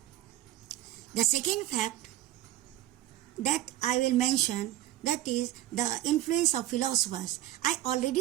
The second fact that I will mention, that is the influence of philosophers. I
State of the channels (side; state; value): left; quieter; 14.3 dB